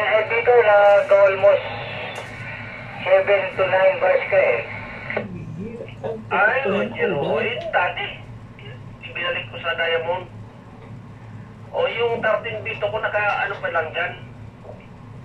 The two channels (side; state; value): both; identical; correlation 1.00